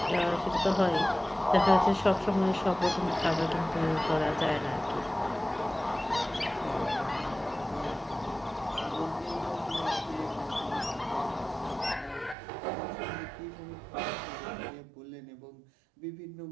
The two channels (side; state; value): left; drops out; at 12.4 s